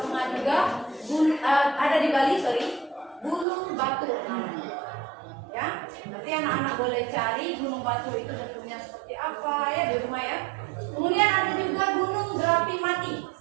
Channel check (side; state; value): left; drops out; at 3.5 s